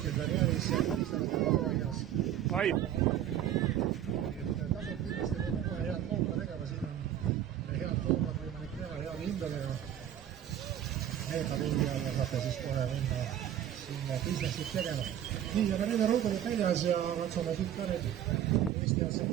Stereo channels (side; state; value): left; quieter; 10.7 dB